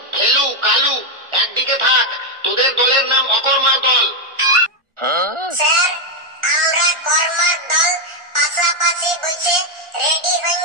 ফেলু, কালু একদিকে থাক, তোদের দলের নাম অকর্মার দল। স্যার, আমরা কর্মার দল পাশাপাশি বসে রেডি হয়ে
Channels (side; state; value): left; late; 1.4 ms